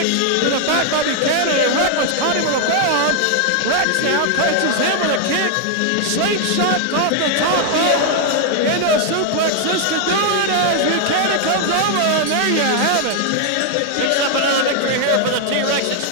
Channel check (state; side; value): different; both; correlation 0.00